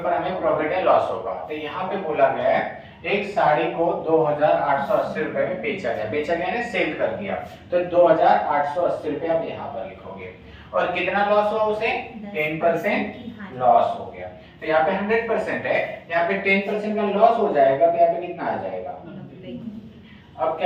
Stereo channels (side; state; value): both; identical; correlation 1.00